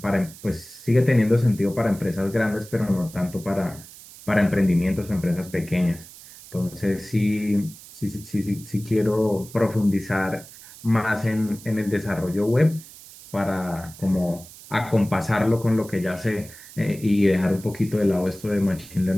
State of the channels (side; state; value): right; noise; hiss, 18 dB below the sound